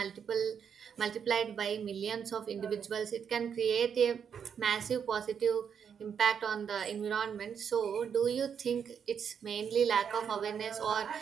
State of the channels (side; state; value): left; quieter; 7.4 dB